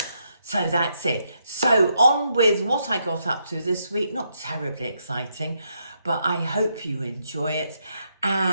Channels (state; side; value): inverted; both; correlation -0.78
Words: So that's it. So on with what I got up to this week. Not terribly exciting, but I hope you enjoy it.